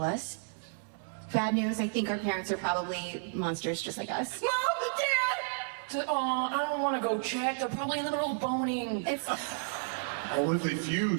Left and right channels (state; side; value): silent; left; 56 dB below the other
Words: us. Bad news, I think our parents are probably monsters just like us. Dad! Oh, I don't want to go check. They're probably in the middle of boning. It's... Oh, what if they